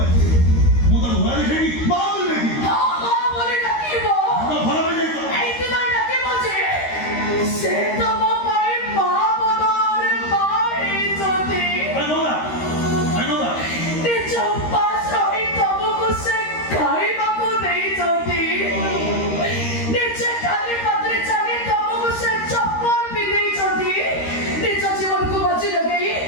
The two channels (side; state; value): right; late; 13 ms